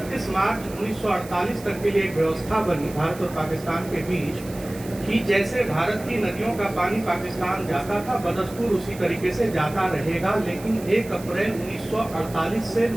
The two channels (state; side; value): noise; right; hiss, 18 dB below the sound